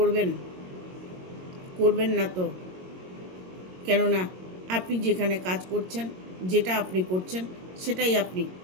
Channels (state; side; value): late; left; 22 ms